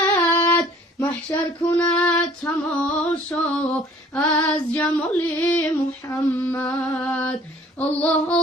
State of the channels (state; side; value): normal; both; correlation 0.54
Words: محشر کند تماشا از جمال محمد. الله